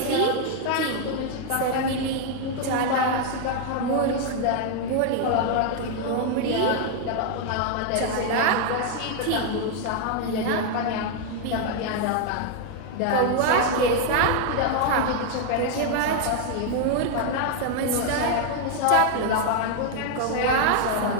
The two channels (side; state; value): both; different; correlation 0.00